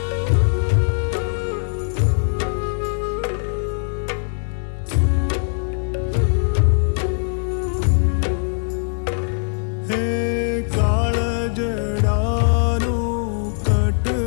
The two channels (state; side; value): silent; right; 63 dB below the other